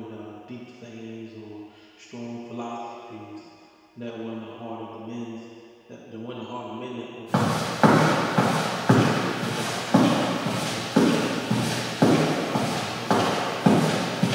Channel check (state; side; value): identical; both; correlation 1.00